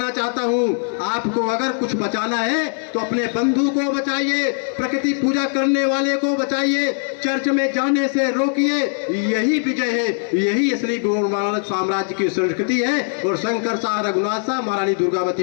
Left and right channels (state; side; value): silent; right; 65 dB below the other